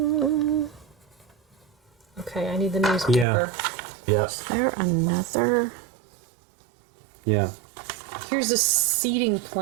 Okay, I need the newspaper. Yes. Is there another? Yeah. Here's a seating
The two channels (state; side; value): drops out; left; at 3.2 s